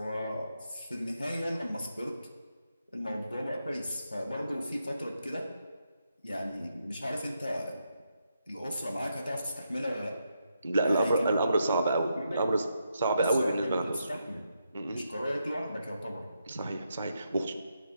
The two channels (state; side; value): inverted; both; correlation -0.83